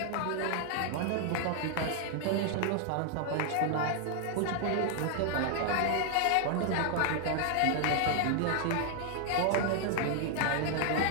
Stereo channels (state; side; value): different; both; correlation 0.00